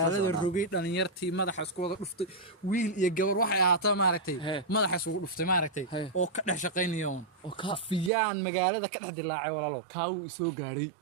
rogay dhalinyartii madaxa isku wada dhuftay wiil iyo gabar waxay ahaataa maaragtay madaxa isku dhuftay maaragtay oo ka dhex shaqeynaya oo ka fiyaan magaalada ka dhex dilaacay walaalo kaaw soo gaaray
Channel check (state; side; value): drops out; left; at 8.1 s